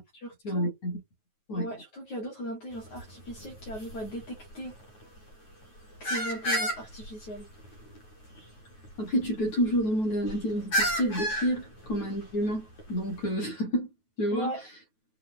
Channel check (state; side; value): late; right; 9.3 ms